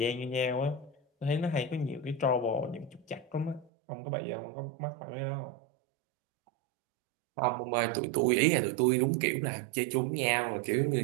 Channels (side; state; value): left; drops out; at 3.7 s